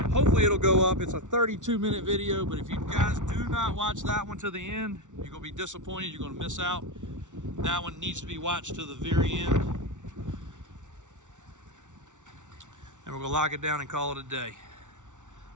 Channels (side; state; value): left; late; 0.86 ms